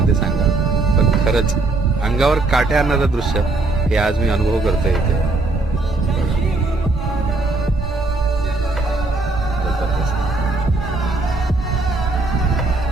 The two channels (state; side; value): quieter; left; 3.3 dB